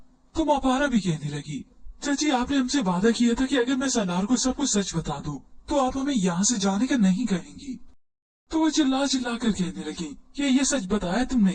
तो मापारा भी कहने लगी, चाची आपने हमसे वादा किया था कि अगर मैं सलार को सब कुछ सच बता दूं, तो आप हमें यहाँ से जाने का नहीं कहेंगी। तो वो चिल्ला चिल्ला कर कहने लगी कि ये सच बताया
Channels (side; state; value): both; identical; correlation 1.00